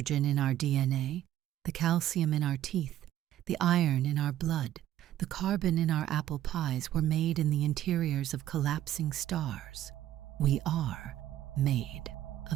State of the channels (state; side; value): quieter; left; 12.6 dB